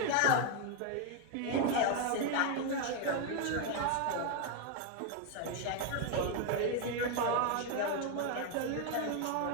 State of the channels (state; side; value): different; both; correlation 0.01